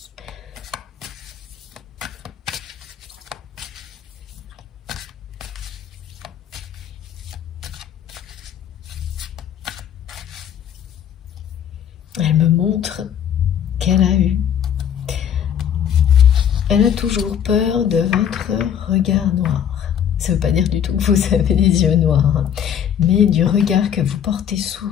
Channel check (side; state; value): right; quieter; 8.9 dB